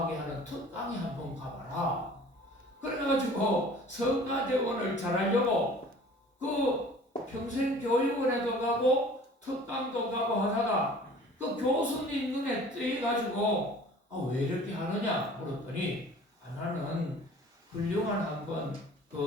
하는 특강에 한번 가봐라. 그래가지고 성가대원을 잘하려고 그 평생교육원에도 가고 특강도 가고 하다가 그 교수님 눈에 띄어가지고 왜 이렇게 하느냐 물었더니 나는 훌륭한 한번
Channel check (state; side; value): normal; both; correlation 0.47